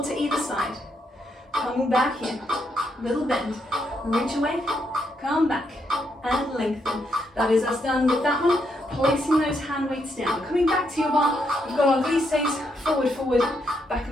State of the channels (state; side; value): normal; both; correlation 0.78